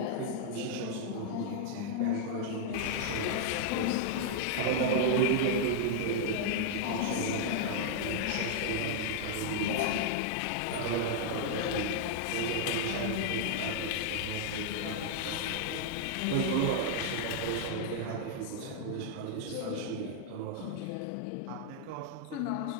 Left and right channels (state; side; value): different; both; correlation -0.01